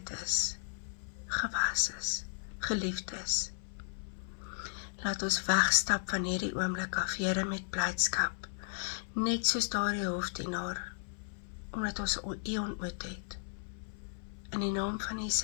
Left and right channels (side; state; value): right; silent; 54 dB below the other